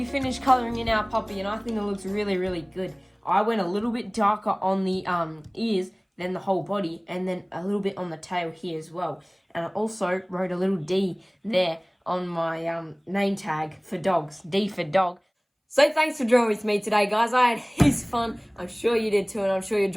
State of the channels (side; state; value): both; identical; correlation 1.00